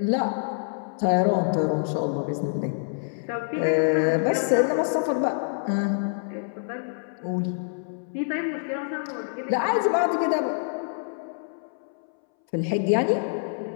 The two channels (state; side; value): silent; right; 61 dB below the other